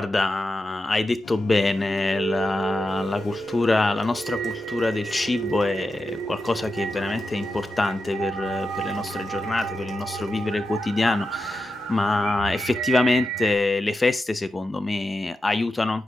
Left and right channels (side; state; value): both; normal; correlation 0.89